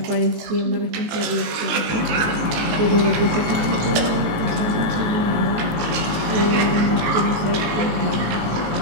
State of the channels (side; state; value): left; late; 19 ms